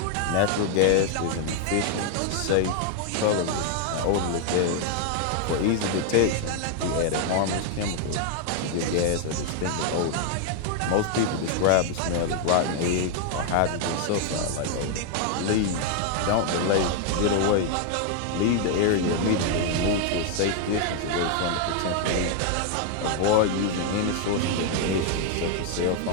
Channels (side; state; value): both; different; correlation 0.00